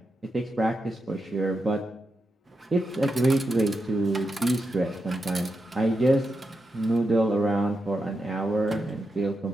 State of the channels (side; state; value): both; normal; correlation 0.86